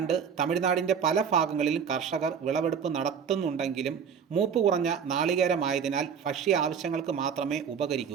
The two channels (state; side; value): quieter; left; 7.1 dB